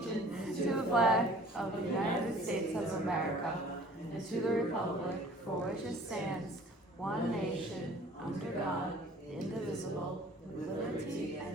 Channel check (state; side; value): normal; both; correlation 0.50